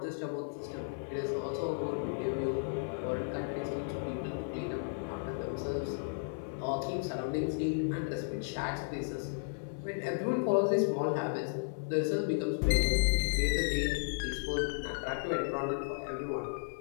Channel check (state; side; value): silent; right; 55 dB below the other